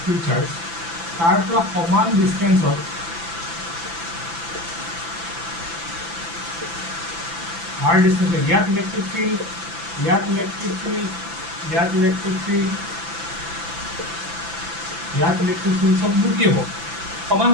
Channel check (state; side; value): late; left; 6.0 ms